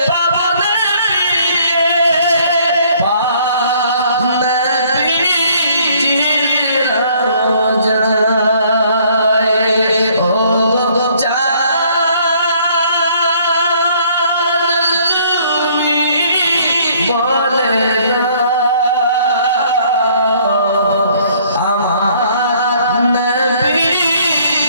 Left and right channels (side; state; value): both; inverted; correlation -0.61